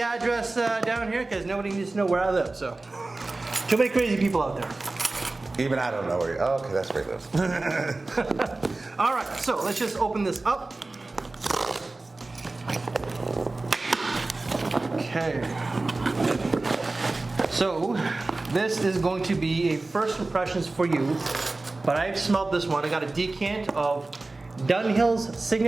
down here because nobody needs to know where I live, so. Too many crazy people out there. Even I don't know where you are. Okay, that's where he lives. All right, so let's just open this up. Okay. So this is going to be a first impressions for you, but I've smelled this one. I got a decant of Dunhill's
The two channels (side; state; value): left; quieter; 3.2 dB